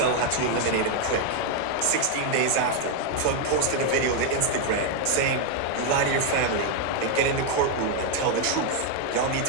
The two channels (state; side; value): different; both; correlation 0.01